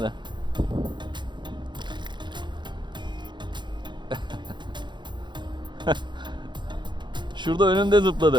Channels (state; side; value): late; left; 0.22 ms